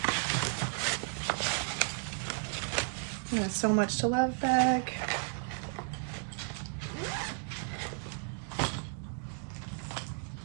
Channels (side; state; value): left; silent; 55 dB below the other